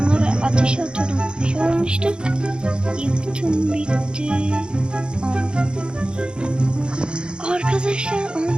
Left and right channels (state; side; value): late; left; 0.051 ms